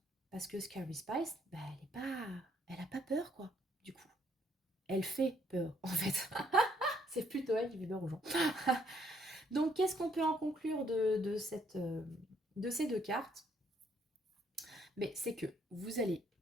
Parce que Scary Spice, bah, elle n'a pas peur, quoi, du coup. Elle fait peur, en fait. C'est plutôt elle qui fait peur aux gens. Donc, qu'est-ce qu'on peut en conclure de ces deux cartes? Mais c'est que vous allez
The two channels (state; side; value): normal; both; correlation 0.69